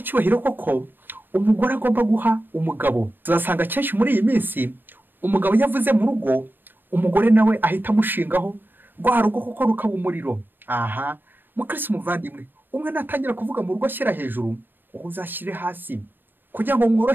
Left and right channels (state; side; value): late; left; 0.094 ms